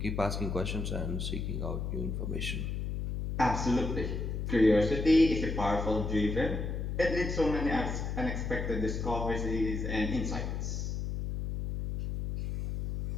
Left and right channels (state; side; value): noise; left; hum, 3 dB below the sound